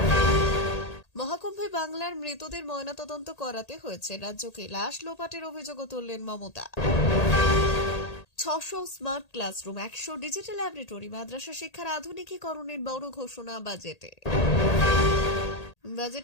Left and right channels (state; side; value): late; right; 1.8 ms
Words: মহাকুম্ভে বাংলার মৃতদের ময়নাতদন্ত করাতে হয়েছে রাজ্যকে। লাশ লোপাটের অভিযোগও তুললেন Mamata. 600 smart classroom, 100 digital laboratory, মাদ্রাসা শিক্ষার আধুনিকীকরণের বড় ঘোষণা বাজেটে।